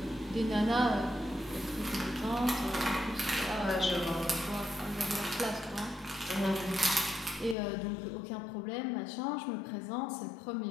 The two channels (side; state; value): right; drops out; at 7.6 s